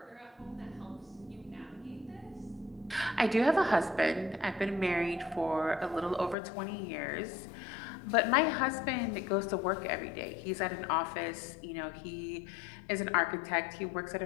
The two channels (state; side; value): drops out; right; at 6.4 s